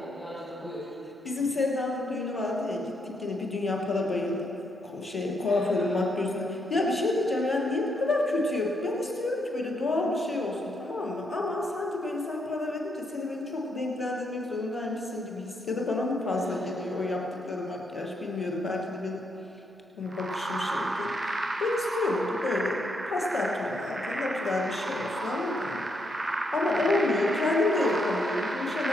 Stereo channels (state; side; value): normal; both; correlation 0.77